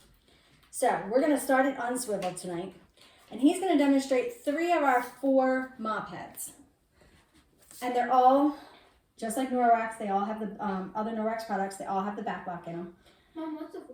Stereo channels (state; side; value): identical; both; correlation 1.00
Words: So we're going to start it unswiveled tonight, and he's going to demonstrate 3 of our 4 mop heads. And they're all, just like Norwex, they all have the other Norwex products, they all have the back lock in them. Mom, what's the